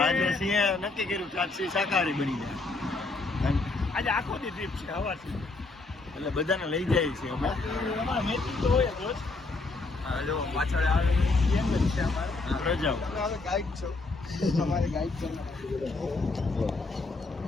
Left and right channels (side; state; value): right; quieter; 3.5 dB